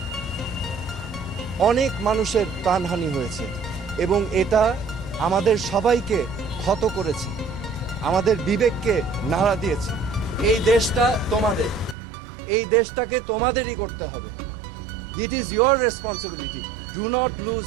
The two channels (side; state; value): left; drops out; at 12.0 s